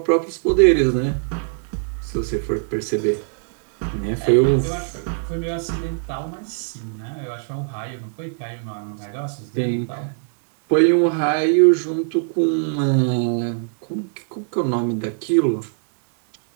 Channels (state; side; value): silent; left; digital silence